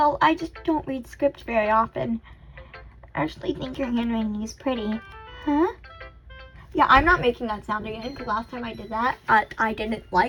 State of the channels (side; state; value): both; identical; correlation 1.00